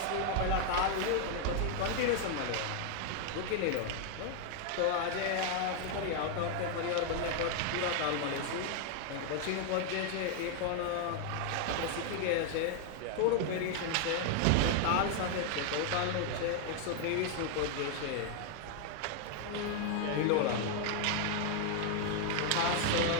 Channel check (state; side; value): different; both; correlation 0.00